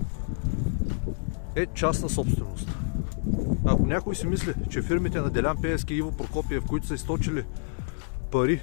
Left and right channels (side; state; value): right; silent; 60 dB below the other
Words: е частна собственост. Ако някой си мисли, че фирмите на Делян Пеевски и Иво Прокопиев, които са източили пари